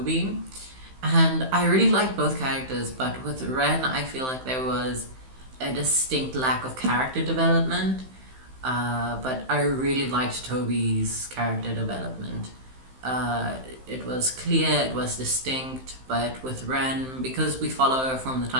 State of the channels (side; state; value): left; late; 15 ms